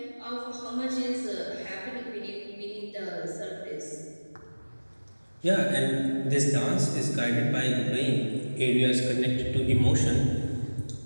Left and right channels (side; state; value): both; inverted; correlation -1.00